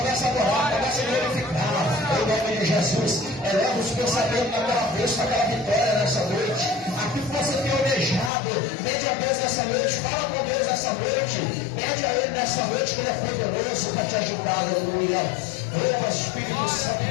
a adorar, começa a glorificar, em nome de Jesus. Eleva os pensamentos na tua cabeça, aquela vitória nessa noite. Aquilo que você tem almejado, pede a Deus nessa noite, fala com Deus nessa noite, pede a Ele nessa noite, que Ele é poderoso para te ajudar, aleluia. Oh, Espírito Santo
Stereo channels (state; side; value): drops out; right; at 8.3 s